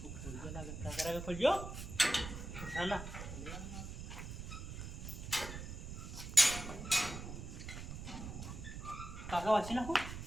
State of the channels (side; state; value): right; noise; rumble, 8 dB below the sound